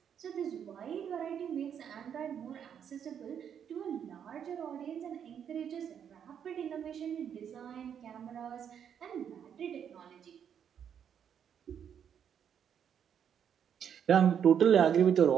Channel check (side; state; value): left; quieter; 8.4 dB